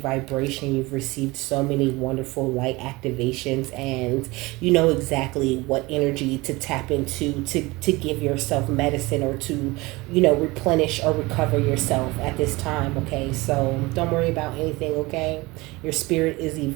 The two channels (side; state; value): left; quieter; 22.4 dB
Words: vibration. You've received so many wonderful light activations, and you know exactly what energy to tap into to give yourself medicine, or to replenish or recover yourself at this time, okay? So don't worry about anything, okay? Your spirit is